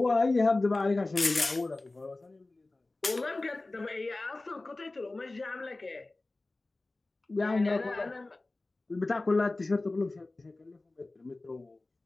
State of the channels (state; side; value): quieter; right; 3.1 dB